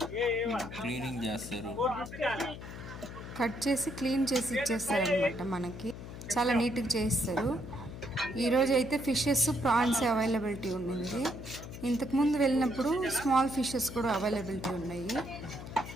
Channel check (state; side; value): noise; left; hum, 11 dB below the sound